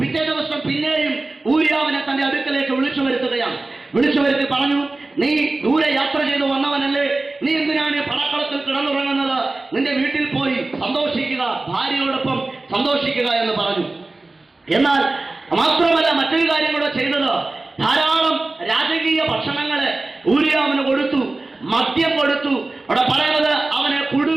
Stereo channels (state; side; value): quieter; left; 3.1 dB